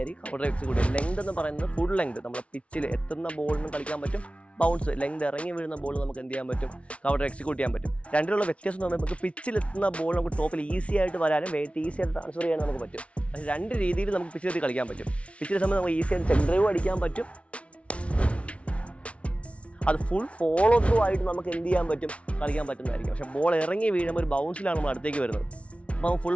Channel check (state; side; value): late; right; 0.062 ms